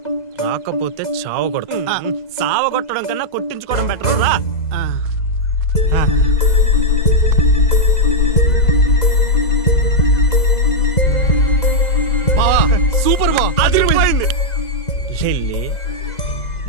రాకపోతే చావ కొడతావు. సావ కొట్టడం కన్నా కొట్టించుకోవడం బెటర్ రా. సూపర్ బా, అదిరిపోయింది. లిల్లీ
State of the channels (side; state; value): right; late; 2.0 ms